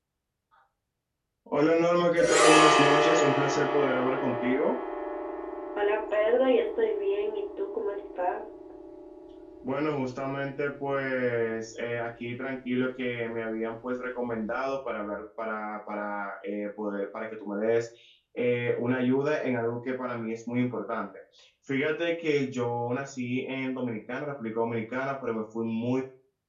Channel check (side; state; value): both; identical; correlation 1.00